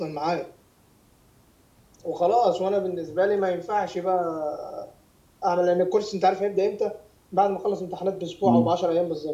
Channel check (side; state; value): both; identical; correlation 1.00